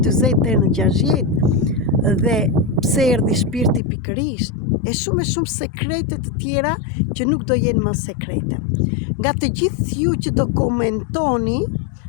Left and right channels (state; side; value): drops out; right; at 3.8 s